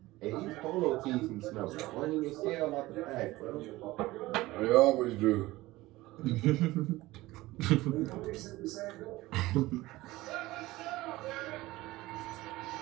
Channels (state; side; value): quieter; left; 18.6 dB